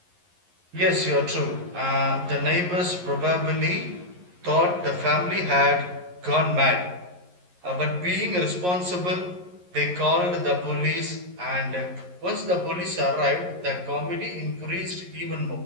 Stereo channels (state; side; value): late; left; 11 ms